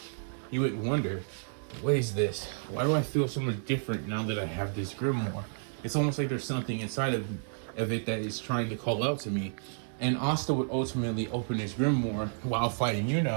He would wonder, what is this? Why do I feel so much different now that I have this grimoire? It's almost like there's something inside of it that is trying to call out to me. And Asta would ultimately open his grimoire while fighting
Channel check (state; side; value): silent; left; digital silence